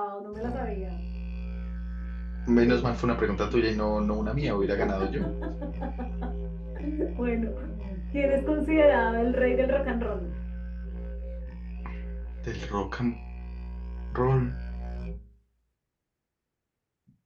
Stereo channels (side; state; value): both; identical; correlation 1.00